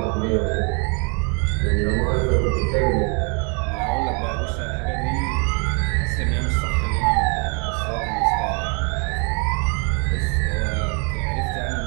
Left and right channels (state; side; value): quieter; left; 35.6 dB